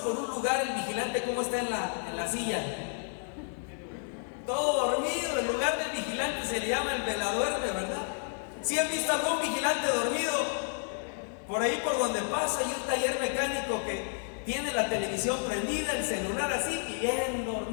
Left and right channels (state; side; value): silent; right; 57 dB below the other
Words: un lugar, el vigilante, ¿cómo está en la silla? Todo dormido. El lugar del vigilante se le llama el veladuerme, ¿verdad? ¿Sí han visto algún vigilante dormido? Por ahí por donde pasa hay un taller mecánico que tiene la televisión prendida, el celular así y bien